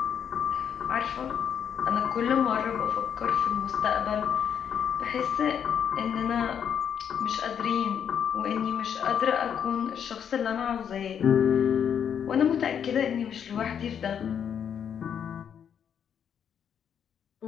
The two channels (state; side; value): quieter; right; 8.3 dB